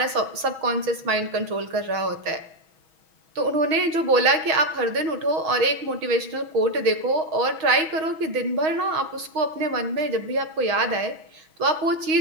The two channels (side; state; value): left; late; 6.4 ms